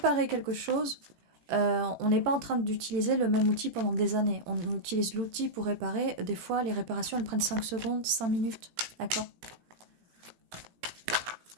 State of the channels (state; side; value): late; left; 18 ms